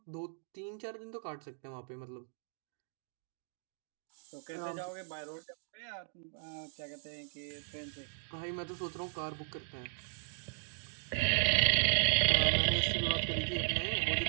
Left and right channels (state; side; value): silent; left; digital silence